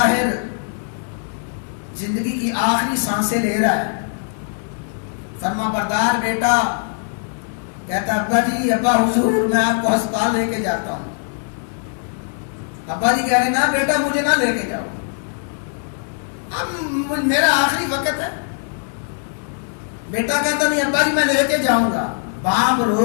زندگی کی آخری سانسیں لے رہا ہے، فرما بردار بیٹا کہتا، ابا جی، ابا حضور میں آپ کو ہسپتال لے کے جاتا ہوں۔ ابا جی کہہ رہے، نہ بیٹا مجھے نہ لے کے جاؤ، اب میرا آخری وقت ہے۔ بیٹا کہتا، نہیں ابا جی میں لے کے جاؤں گا۔ باپ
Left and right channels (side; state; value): right; silent; 65 dB below the other